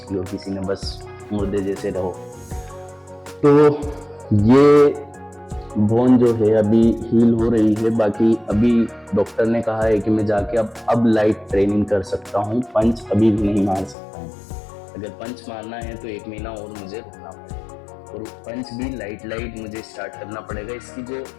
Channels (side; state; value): right; drops out; at 14.0 s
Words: ली हो किसी ने, बस मुर्दे जैसे रहो। तो ये बोन जो है अभी हील हो रही है, बाकी अभी डॉक्टर ने कहा है कि मैं जाके अब लाइट ट्रेनिंग कर सकता हूँ, पंच अभी भी नहीं मार सकता हूँ। अगर पंच मारना है तो 1 महीना और मुझे रुकना पड़ेगा, और पंच भी लाइट मुझे स्टार्ट करना पड़ेगा। इसकी जो